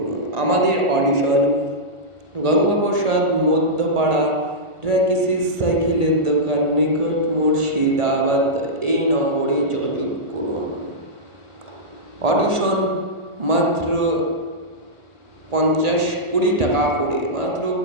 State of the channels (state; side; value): late; left; 1.4 ms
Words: আমাদের অডিশন গঙ্গাপ্রসাদ মধ্যপাড়া ট্র্যাকিসিস সাইকেলের দোকান নিকট মুর্শিদাবাদ। এই নম্বরে যোগাযোগ করুন। অডিশন মাত্র 20 টাকা করে, মাত্র